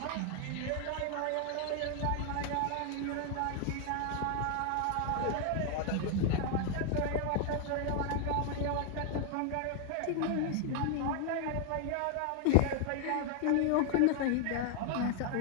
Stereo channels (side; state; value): both; different; correlation 0.00